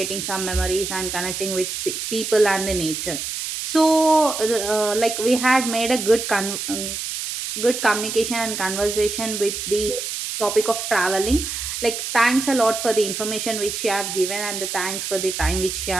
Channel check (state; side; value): noise; right; hiss, 5 dB below the sound